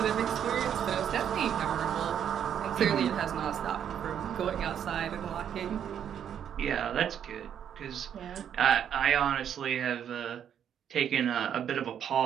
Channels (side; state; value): left; quieter; 9.0 dB